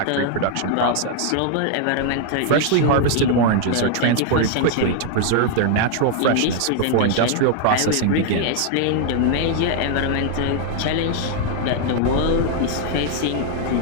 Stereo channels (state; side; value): different; both; correlation 0.00